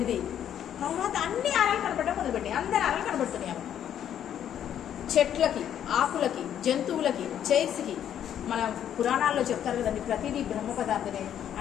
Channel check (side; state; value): right; quieter; 10.0 dB